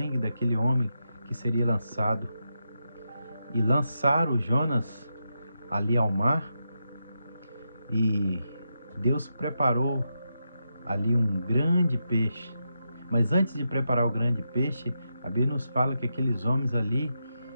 daquele homem que seria lançado. E lançaram Jonas ali ao mar, e Deus preparou ali um grande peixe. Mas antes de preparar o grande peixe, a Bíblia nos fala que aqueles homens ali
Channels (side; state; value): both; inverted; correlation -0.86